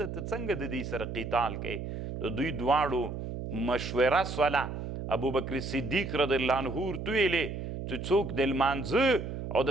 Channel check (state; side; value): noise; right; hum, 6 dB below the sound